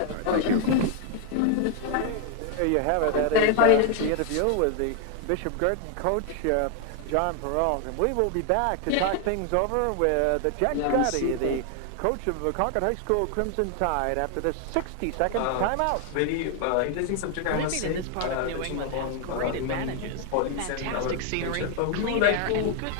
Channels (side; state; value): both; different; correlation 0.00